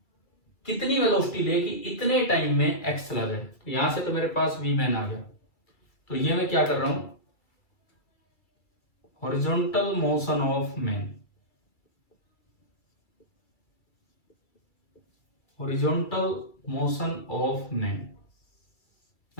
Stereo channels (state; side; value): late; right; 2.3 ms